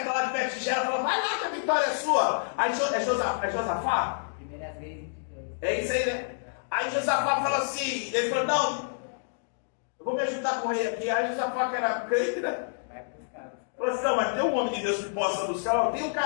lá de Betigela, falam, vai lá que a vitória é sua. Aí é Josafá? Primeiras vezes. É isso aí, né? Aí Josafá fala assim, ele falou, não, eu vou me ajudar com o rei aqui. Aí Josafá, que era crente, né? Vai buscar. Falou assim, não, mas tem um homem de Deus que possa buscar. Não, tem um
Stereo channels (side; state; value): right; silent; digital silence